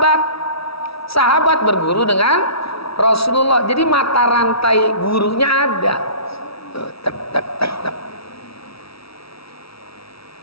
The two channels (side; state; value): right; late; 0.76 ms